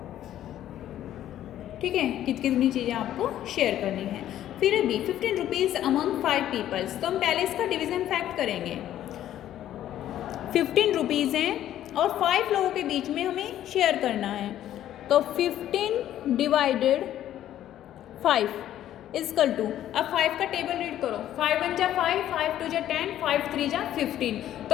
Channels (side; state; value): right; quieter; 12.0 dB